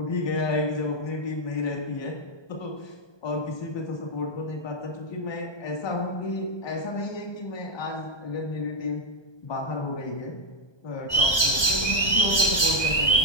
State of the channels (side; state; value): right; late; 1.2 ms